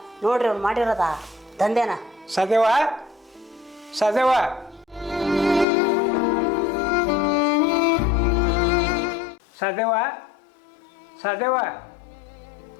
ನೋಡ್ರಿ ಅವ್ನು ಮಾಡಿರೋದ ದಂಧೆನ. ಸದೇವ ಸದೇವ ಸದೇವ ಸದೇವ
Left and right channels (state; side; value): drops out; right; at 5.7 s